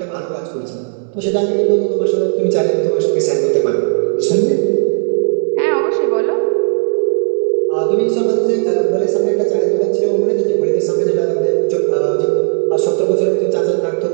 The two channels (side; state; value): left; silent; 70 dB below the other